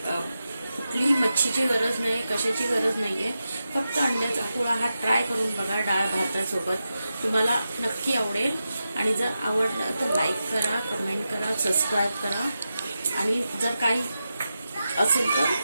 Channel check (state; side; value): inverted; both; correlation -0.90